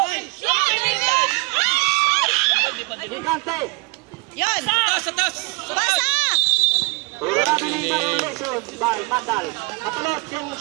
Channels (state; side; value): quieter; left; 27.2 dB